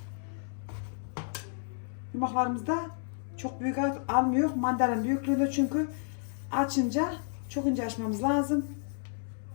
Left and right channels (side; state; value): right; silent; 57 dB below the other